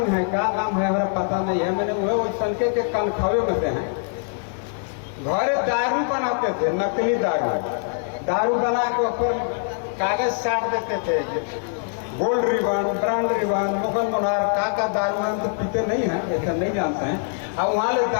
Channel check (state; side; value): silent; right; 63 dB below the other